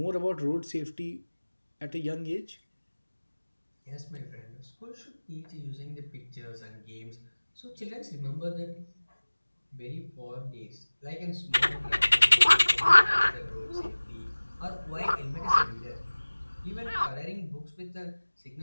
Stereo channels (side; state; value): both; inverted; correlation -1.00